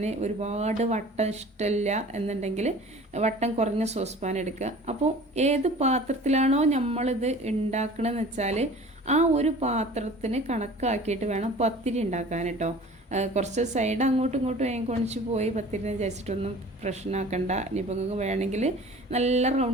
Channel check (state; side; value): normal; both; correlation 0.44